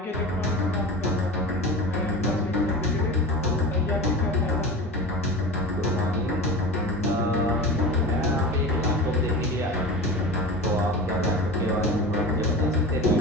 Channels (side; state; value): both; normal; correlation 0.30